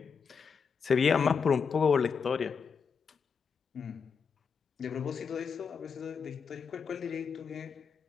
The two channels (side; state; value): right; quieter; 6.0 dB